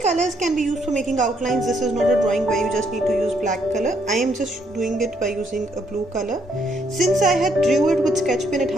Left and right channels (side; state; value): both; normal; correlation 0.72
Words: colors can be used for making outlines. This is not a drawing where you just need to use black color. I am just doing it by using a blue color. Since I had drew it with sketch pen, it